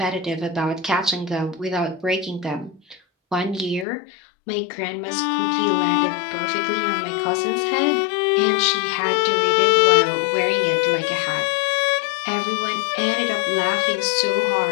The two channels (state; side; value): drops out; right; at 3.9 s